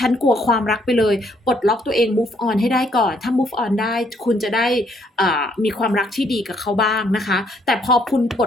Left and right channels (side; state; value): both; normal; correlation 0.69